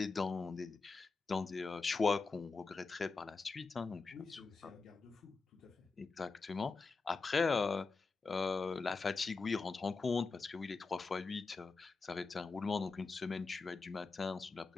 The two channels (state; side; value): quieter; right; 4.2 dB